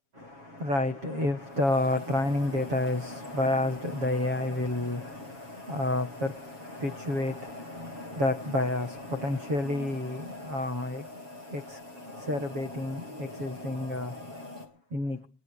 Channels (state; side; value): late; left; 7.3 ms